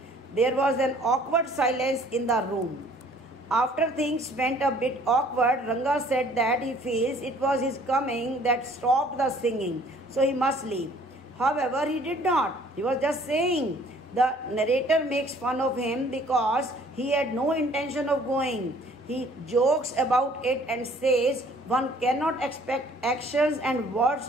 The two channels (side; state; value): both; normal; correlation 0.56